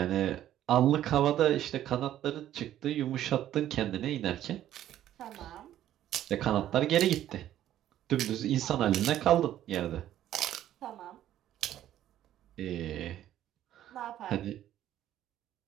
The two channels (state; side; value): quieter; left; 12.2 dB